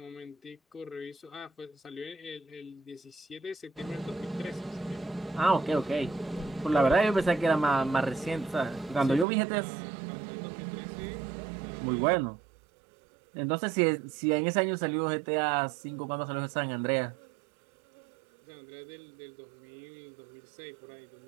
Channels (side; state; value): left; drops out; at 9.2 s